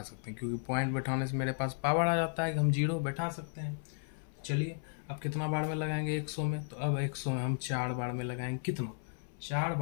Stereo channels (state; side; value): silent; right; 55 dB below the other